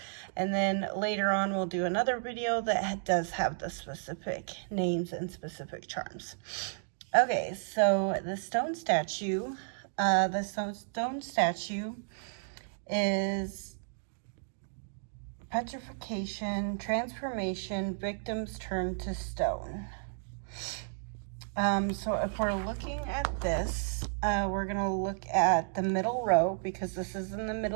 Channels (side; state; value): left; silent; digital silence